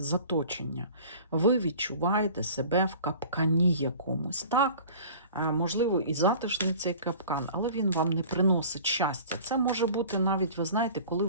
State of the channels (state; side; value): inverted; both; correlation -0.43